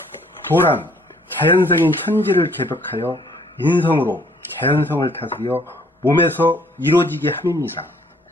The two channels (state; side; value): normal; both; correlation 0.61